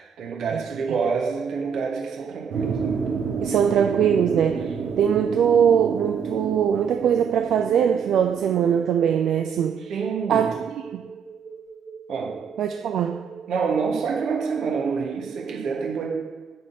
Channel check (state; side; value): quieter; left; 7.2 dB